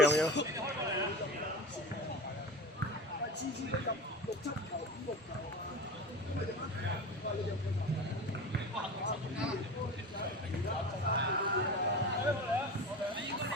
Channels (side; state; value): both; normal; correlation 0.31